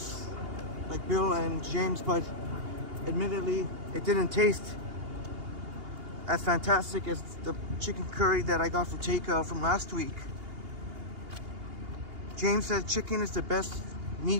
like Bill and James, but admittedly, it didn't taste as fantastic as the chicken curry that I got for takeout from last week. James said chicken is the best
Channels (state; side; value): late; left; 2.8 ms